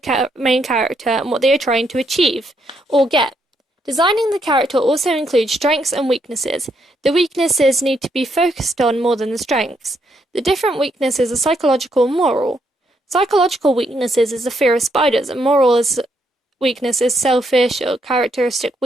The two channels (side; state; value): both; normal; correlation 0.75